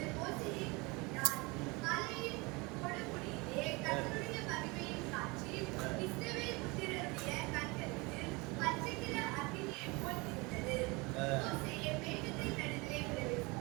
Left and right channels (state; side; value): quieter; left; 26.2 dB